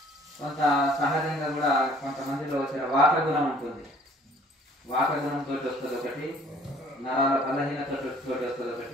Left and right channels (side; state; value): both; normal; correlation 0.56